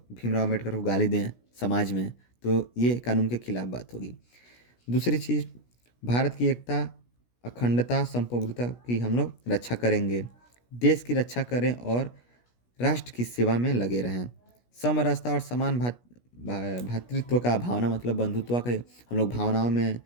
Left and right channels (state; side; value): late; right; 17 ms